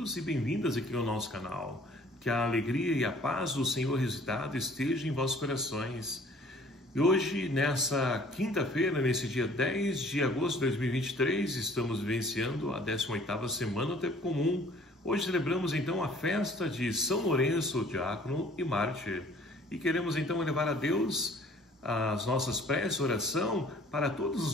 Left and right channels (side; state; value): both; normal; correlation 0.54